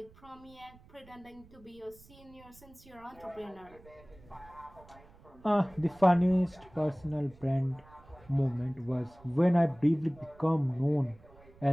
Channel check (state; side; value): noise; right; rumble, 24 dB below the sound